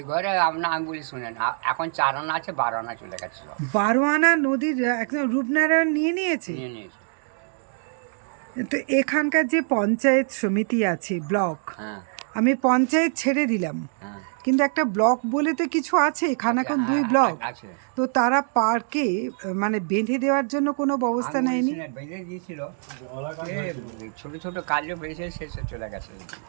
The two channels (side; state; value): left; silent; 59 dB below the other